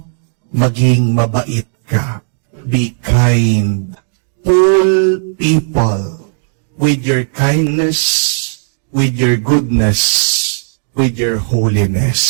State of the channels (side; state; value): left; silent; digital silence